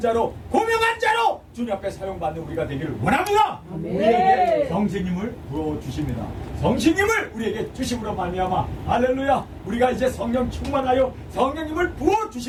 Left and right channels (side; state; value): both; identical; correlation 1.00